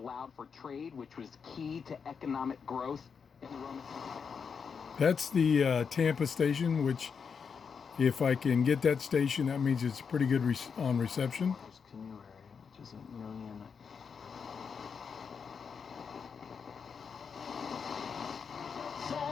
for trade, which was key to economic growth in the Roman. That's the Tampa station, which if I can get that station, that means it's pretty good on reception. There's canoe area, which is a million.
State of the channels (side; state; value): right; quieter; 6.2 dB